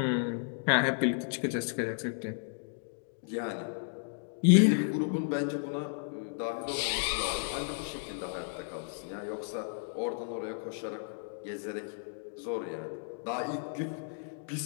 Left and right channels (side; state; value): right; silent; digital silence